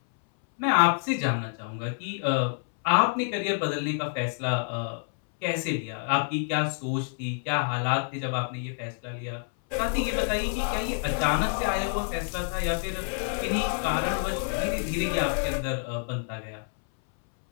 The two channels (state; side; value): silent; right; 60 dB below the other